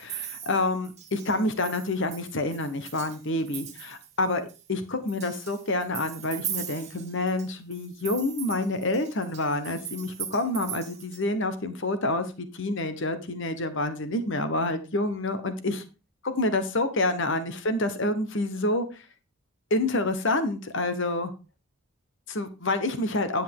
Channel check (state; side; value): normal; both; correlation -0.01